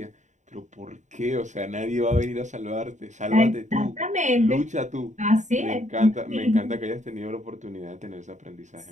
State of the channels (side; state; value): left; late; 0.35 ms